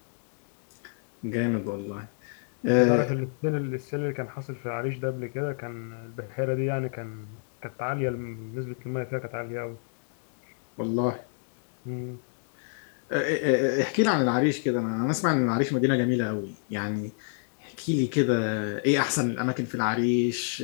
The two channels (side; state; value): right; silent; digital silence